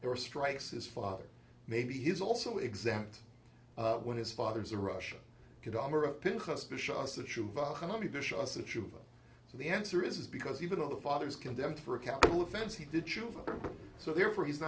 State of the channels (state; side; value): identical; both; correlation 1.00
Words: or strikes his father? Maybe he's also exempt when his father's a rasha. Kedamar of Pinchas b'sha'as tshuva, Hanami b'sha'as tshuva. So the answer is because even though the father is condemned for a capital offense, he did tshuva. So therefore, he's